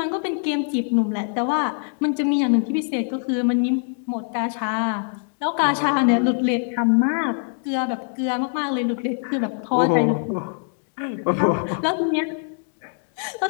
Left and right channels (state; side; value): silent; right; 63 dB below the other